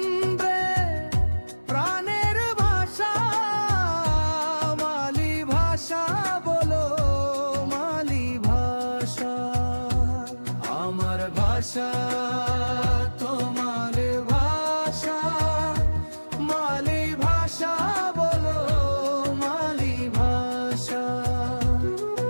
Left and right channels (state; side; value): inverted; both; correlation -1.00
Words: প্রাণের ভাষা, মালি ভাষা বলো মালি ভাষা। আমার ভাষা তোমার ভাষা, মালি ভাষা বলো মালি ভাষা।